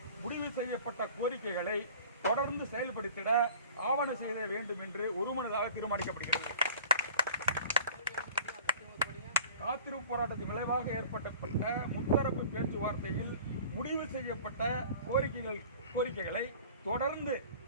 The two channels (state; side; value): inverted; both; correlation -0.45